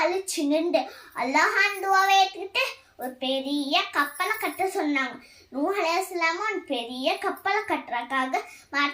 நின்று அல்லாஹான் துவாவை ஏற்றுக்கிட்டு ஒரு பெரிய கப்பலை கட்ட சொன்னாங்க. நூஹ் அலைஹி வஸல்லம் ஒரு பெரிய கப்பலை கட்டுறதுக்காக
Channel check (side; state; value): both; identical; correlation 1.00